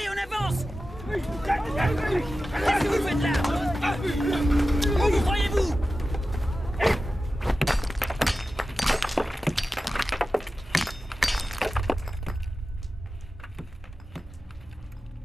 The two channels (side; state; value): both; normal; correlation 0.94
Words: on avance! Qu'est-ce que vous faites là? Où croyez-vous?